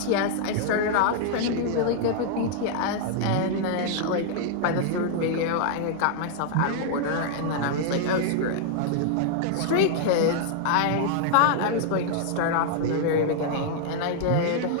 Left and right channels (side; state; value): both; different; correlation 0.00